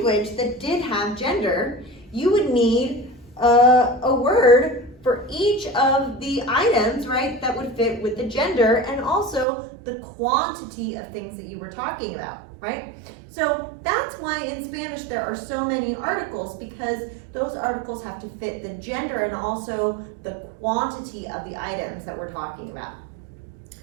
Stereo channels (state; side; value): drops out; left; at 9.5 s